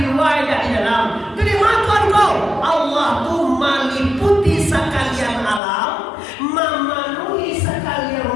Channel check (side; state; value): right; drops out; at 5.6 s